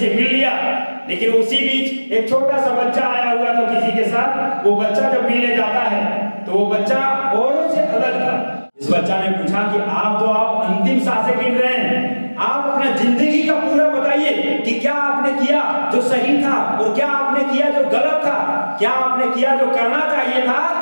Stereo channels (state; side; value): inverted; both; correlation -1.00